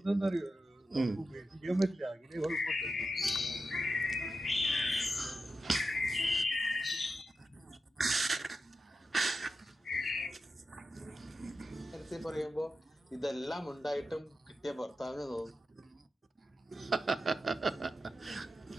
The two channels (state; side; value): normal; both; correlation 0.90